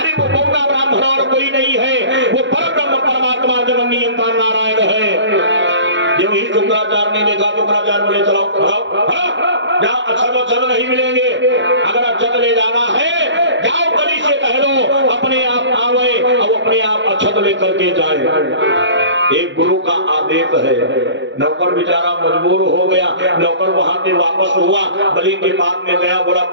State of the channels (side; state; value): left; late; 0.54 ms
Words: वो बौना ब्राह्मण और कोई नहीं है, वो परब्रह्म परमात्मा जगन नियंता नारायण है। जब ही शुक्राचार्य ने देखा, शुक्राचार्य बोले चलो जाओ, अक्षत नहीं मिलेंगे, अगर अक्षत ले जाना है जाओ बलि से कह दो अपने आप आवे और अपने आप अक्षत लेकर के जाए। एक गुरु का आदेश है। नौकर बेचारा मजबूर हो गया। नौकर वहां से वापस हुआ, बलि के पास में गया, बोला